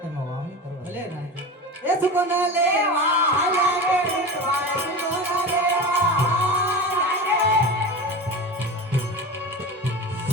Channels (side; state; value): both; normal; correlation 0.28